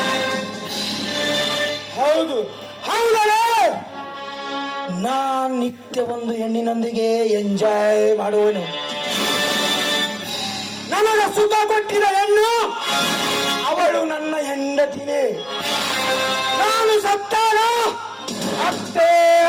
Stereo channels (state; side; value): identical; both; correlation 1.00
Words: ಹೌದು ಹೌದಲ್ಲ, ನಾನ್ ನಿತ್ಯ ಒಂದು ಹೆಣ್ಣಿನೊಂದಿಗೆ ಎಂಜಾಯ್ ಮಾಡುವನು. ನನಗ ಸುಖ ಕೊಟ್ಟಿದ ಹೆಣ್ಣು ಅವಳು ನನ್ನ ಹೆಂಡತಿನೇ. ನಾನು ಸತ್ತಾನ ಅಷ್ಟೇ